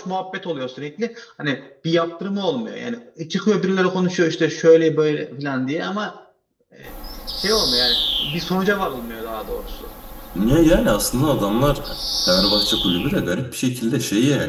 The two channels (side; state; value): both; identical; correlation 1.00